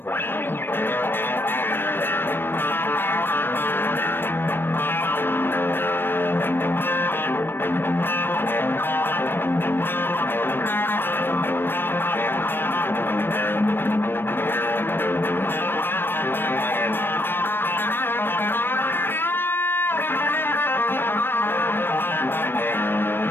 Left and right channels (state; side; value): late; right; 0.098 ms